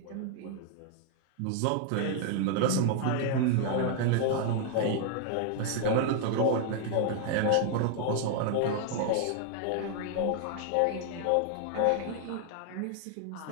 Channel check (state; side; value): different; both; correlation 0.00